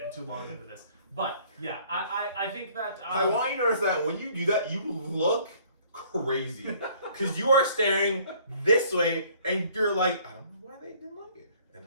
too long into this. But yeah, I think that I want you to notice that when you do that, you look crazy because you are staring this way and you're like, I don't know why they didn't like it.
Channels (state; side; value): inverted; both; correlation -0.57